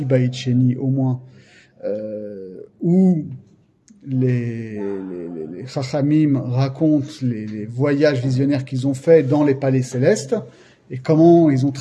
Beit Sheni au moins, où les Chachamim racontent les voyages visionnaires qu'ils ont faits dans les palais célestes et comment ils ont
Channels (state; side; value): identical; both; correlation 1.00